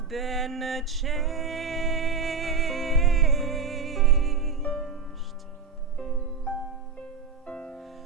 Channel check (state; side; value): quieter; left; 5.3 dB